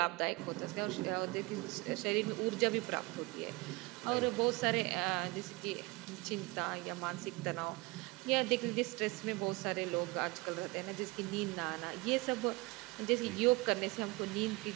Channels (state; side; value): quieter; left; 24.0 dB